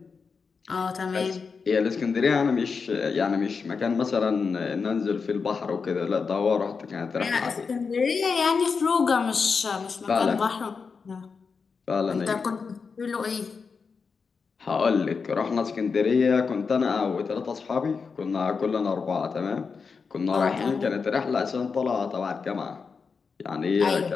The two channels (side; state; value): right; quieter; 5.2 dB